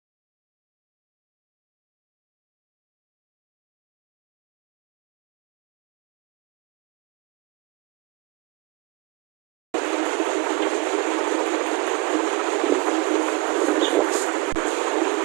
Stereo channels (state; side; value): quieter; left; 24.0 dB